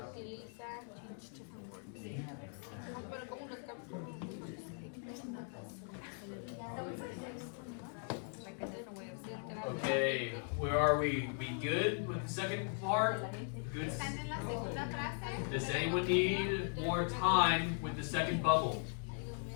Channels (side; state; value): right; silent; 52 dB below the other